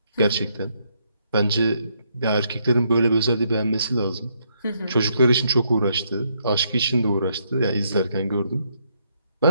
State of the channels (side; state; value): both; inverted; correlation -0.74